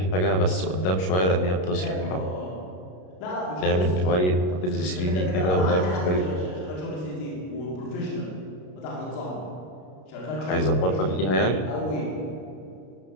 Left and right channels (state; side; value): late; right; 33 ms